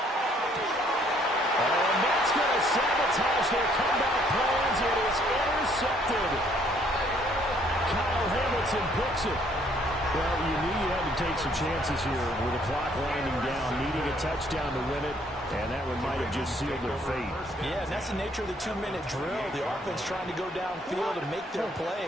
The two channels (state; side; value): normal; both; correlation 0.64